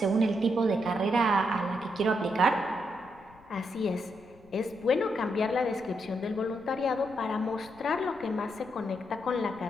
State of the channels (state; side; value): noise; left; rumble, 25 dB below the sound